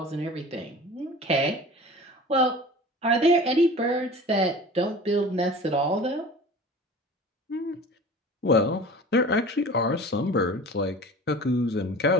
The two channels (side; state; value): both; normal; correlation 0.40